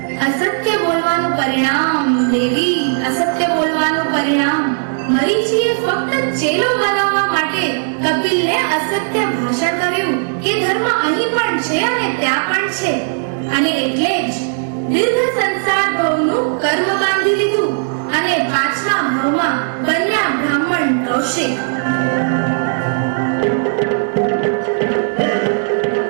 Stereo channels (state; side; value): silent; left; 69 dB below the other